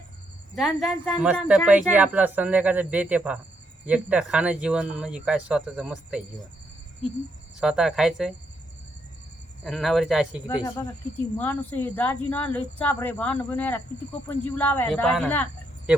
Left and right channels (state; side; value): normal; both; correlation 0.77